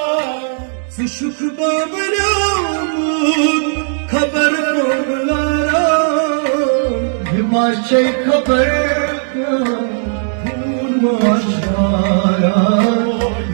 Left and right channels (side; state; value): left; silent; digital silence